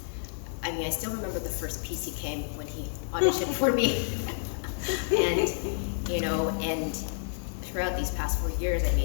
I still remember the first piece he came when he auditioned for me. And, and throughout these past 4 years,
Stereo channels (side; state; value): right; silent; digital silence